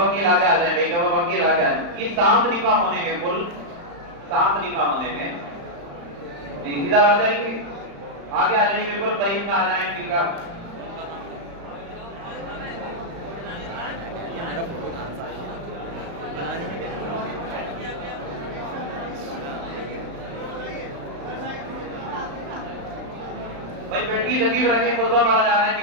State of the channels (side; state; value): left; late; 35 ms